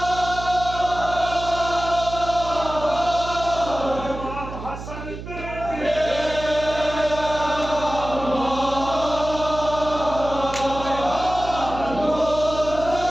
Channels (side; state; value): right; noise; hum, 10 dB below the sound